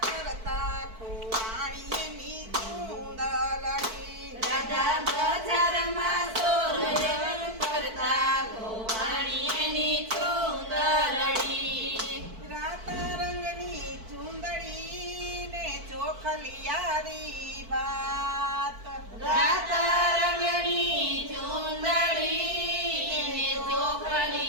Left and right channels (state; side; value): late; left; 4.5 ms